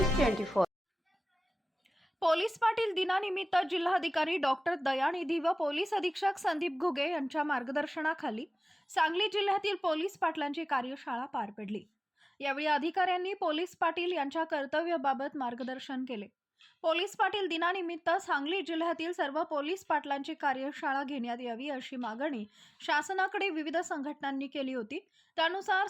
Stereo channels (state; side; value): normal; both; correlation 0.98